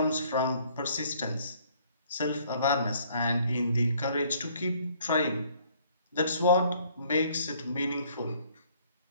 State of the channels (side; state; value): both; inverted; correlation -0.61